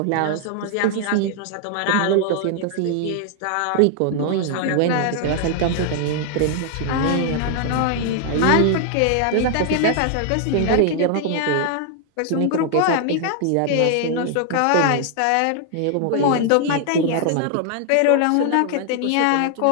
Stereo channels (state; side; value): different; both; correlation 0.00